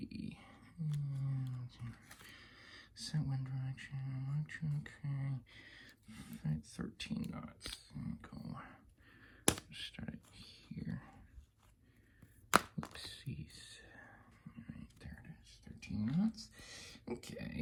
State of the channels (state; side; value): identical; both; correlation 1.00